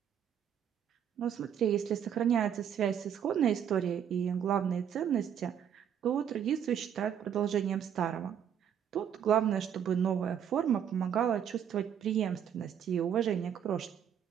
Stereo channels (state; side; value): quieter; left; 8.8 dB